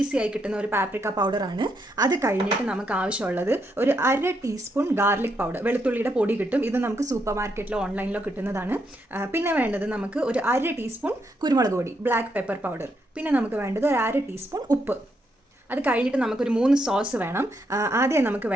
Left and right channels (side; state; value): both; normal; correlation 0.78